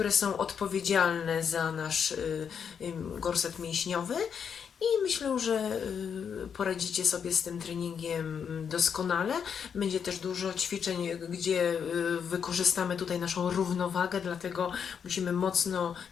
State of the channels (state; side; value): quieter; right; 7.2 dB